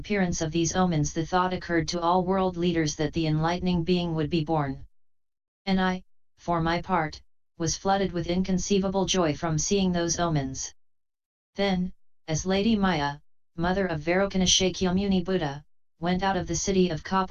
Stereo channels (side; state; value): both; identical; correlation 1.00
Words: of these omens the thought occurred to all world leaders that the enlightening being would be born. And I, for my part, was flooded with inconceivable joy from seeing those omens. Then, as Lady Maya, mother of Vairocana Shakyamuni Buddha, went out of the city of